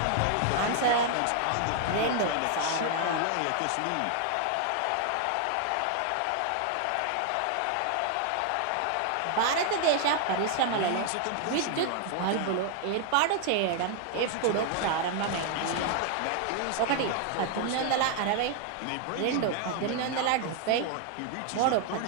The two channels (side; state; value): both; different; correlation 0.00